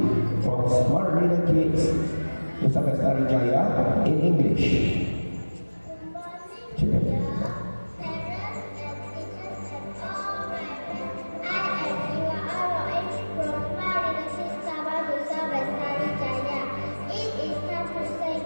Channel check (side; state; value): both; inverted; correlation -1.00